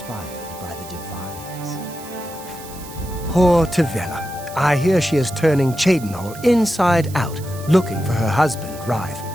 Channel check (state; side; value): noise; right; hiss, 16 dB below the sound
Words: by the divines. Poor Tavella. I hear she is turning Cheydinhal inside out, looking for her husband, Rife.